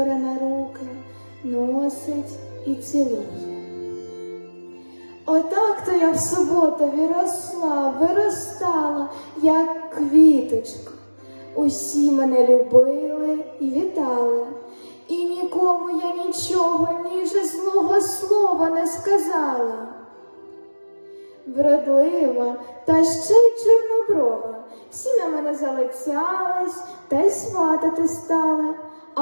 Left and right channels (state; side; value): inverted; both; correlation -1.00